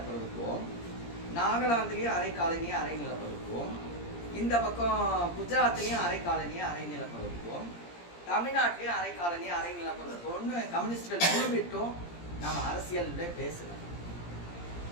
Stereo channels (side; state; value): right; late; 17 ms